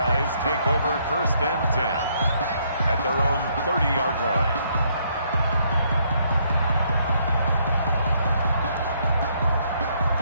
take over 1st and 10 at their own 30-yard line.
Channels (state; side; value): inverted; both; correlation -0.70